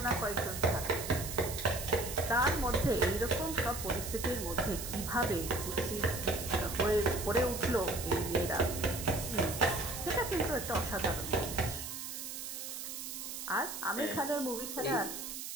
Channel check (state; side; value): noise; right; hiss, 7 dB below the sound